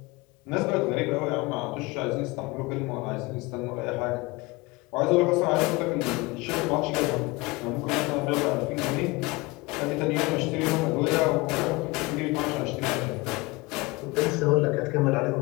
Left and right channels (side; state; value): right; quieter; 23.7 dB